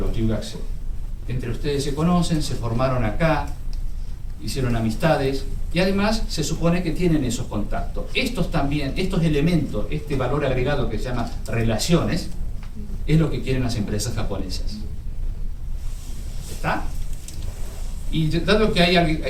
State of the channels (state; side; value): identical; both; correlation 1.00